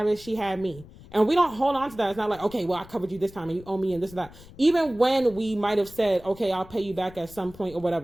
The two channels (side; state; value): left; noise; rumble, 20 dB below the sound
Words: it, she had me. And we don't hold on to that. It's not like, okay, well, I covered you this time and you owe me and this and that. Even when we might have said, okay, I'll pay you back at some point or